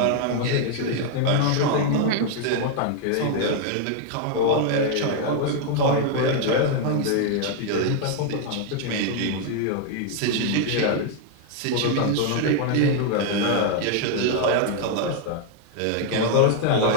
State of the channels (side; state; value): both; different; correlation 0.00